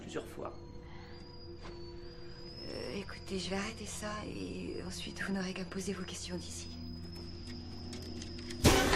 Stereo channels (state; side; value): identical; both; correlation 1.00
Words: plusieurs fois. Écoutez, je vais arrêter ça et ensuite vous n'aurez qu'à poser vos questions d'ici.